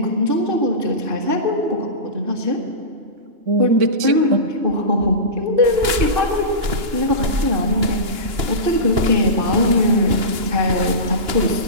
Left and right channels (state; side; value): late; left; 2.9 ms